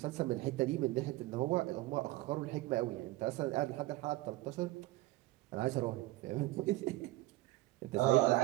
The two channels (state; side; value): quieter; left; 18.4 dB